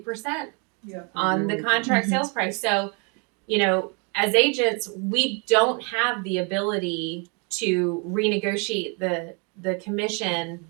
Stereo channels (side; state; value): left; quieter; 35.1 dB